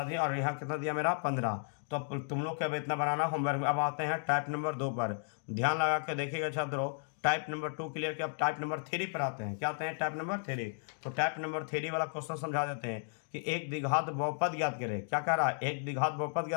दिए, और यहाँ कितना दिया मेरा 15। तो अब तुम लोग क्या इतना बनाना होमवर्क में। अब आते हैं टाइप नंबर 2 पर, ध्यान लगा के देखिएगा छात्रों। टाइप नंबर 2 क्लियर किया, अब टाइप नंबर 3 पर आते हैं। क्या आते हैं, टाइप नंबर 3। तो टाइप नंबर 3 वाला क्वेश्चन समझा देते हैं कि एक द्विघात बहुपद ज्ञात करें। क्या कह रहा है, एक द्विघात बहुपद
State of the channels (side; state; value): right; silent; 55 dB below the other